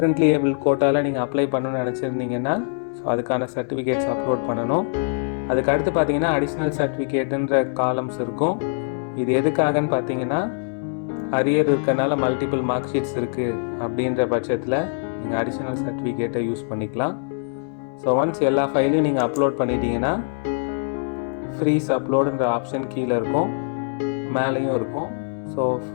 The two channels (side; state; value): right; silent; digital silence